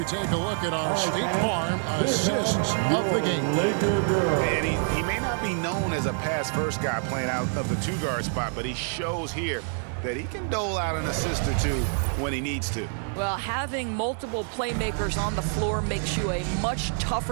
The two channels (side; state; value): left; silent; 60 dB below the other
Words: take a look at our State Farm assists of the game. And he may not be known as a pass-first guy playing out of the 2-guard spot, but he shows here that he can dole out an assist or 2 when he needs to. Well, having multiple playmakers on the floor makes you a much